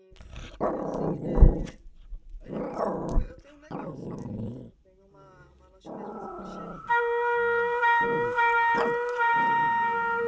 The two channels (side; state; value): both; identical; correlation 1.00